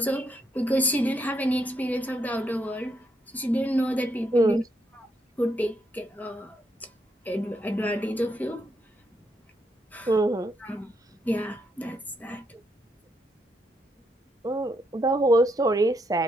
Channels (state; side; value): normal; both; correlation 0.77